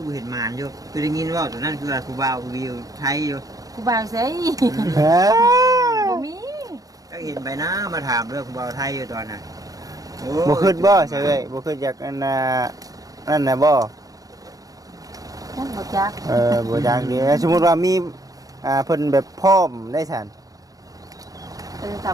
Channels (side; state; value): left; late; 0.17 ms